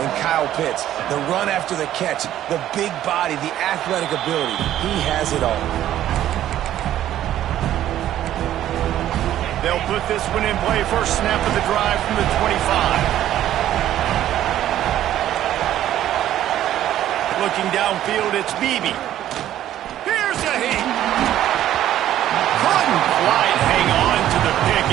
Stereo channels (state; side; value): quieter; left; 12.3 dB